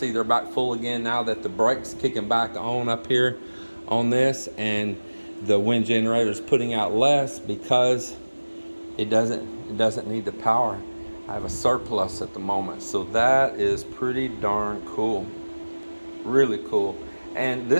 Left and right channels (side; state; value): both; inverted; correlation -1.00